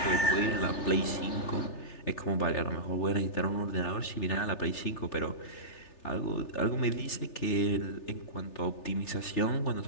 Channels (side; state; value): right; late; 3.4 ms